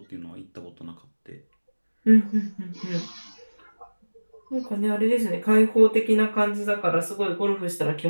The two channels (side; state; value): both; inverted; correlation -1.00